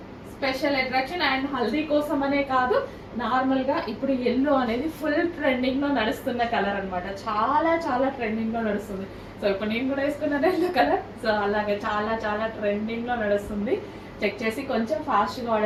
స్పెషల్ అట్రాక్షన్ అండ్ హల్దీ కోసం అనే కాదు, నార్మల్గా ఇప్పుడు ఎల్లో అనేది ఫుల్ ట్రెండింగ్లో నడుస్తున్న కలర్ అనమాట. చాలా చాలా ట్రెండింగ్లో నడుస్తుంది. సో ఇప్పుడు నేను కూడా వేసుకున్నాను ఎల్లో కలర్. సో అలాగే చాలా చాలా ట్రెండింగ్లో నడుస్తుంది. చెక్ చేసి కొంచెం ఫాస్ట్గా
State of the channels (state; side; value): identical; both; correlation 1.00